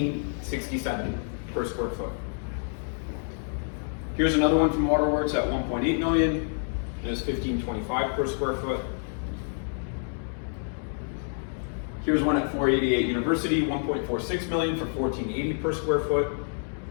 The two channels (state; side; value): silent; right; digital silence